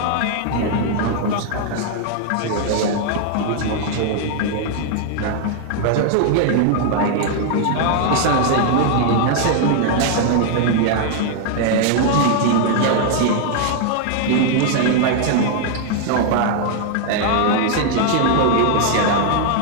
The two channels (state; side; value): different; both; correlation 0.00